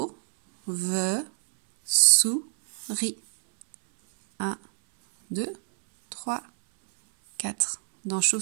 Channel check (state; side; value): silent; left; 61 dB below the other